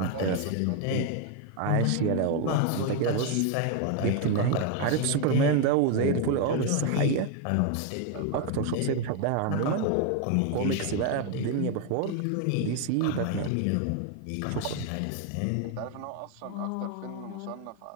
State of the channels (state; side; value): different; both; correlation 0.01